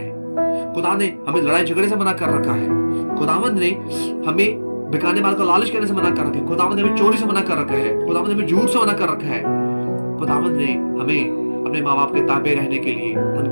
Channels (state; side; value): inverted; both; correlation -1.00